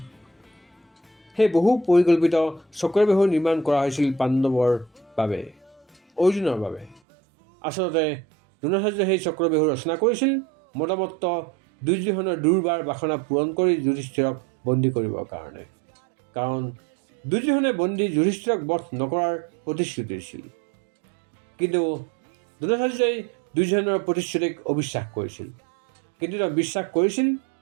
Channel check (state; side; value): drops out; left; at 7.0 s